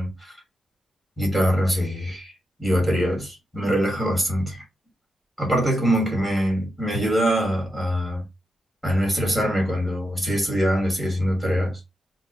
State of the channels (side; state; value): both; normal; correlation 0.86